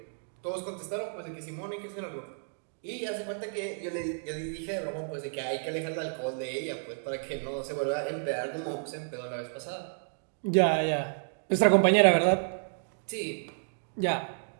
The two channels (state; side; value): silent; left; digital silence